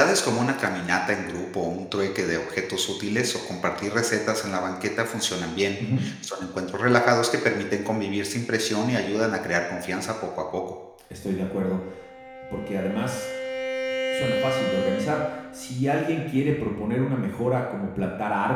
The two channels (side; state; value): both; identical; correlation 1.00